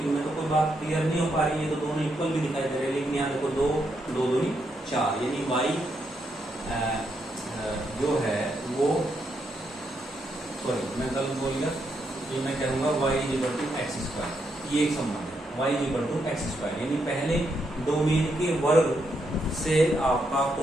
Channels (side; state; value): both; normal; correlation 0.79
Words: इनमें तो कोई बात क्लियर नहीं हो पा रही है, ये तो दोनों इक्वल भी दिखाई दे रहे हैं, लेकिन यहाँ देखो 2 2 2 4, यानी y जो है वो, सॉरी मैं गलत बोल गया, ये मैं कहूँगा y = x²। ये एक संबंध है, y = x², यानी पहले डोमेन के वर्ग से आपका